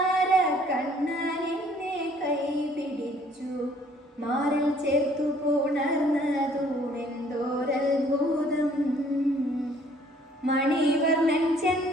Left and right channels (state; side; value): normal; both; correlation 0.59